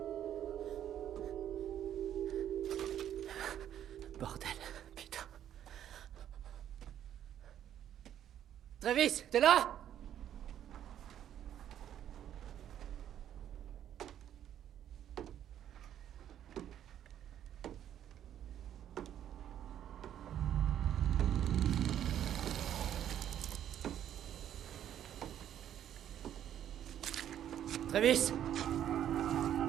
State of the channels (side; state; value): left; quieter; 10.5 dB